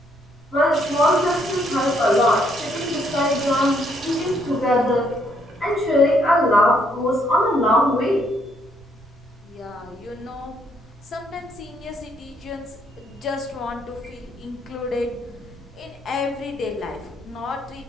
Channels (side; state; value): right; noise; rumble, 25 dB below the sound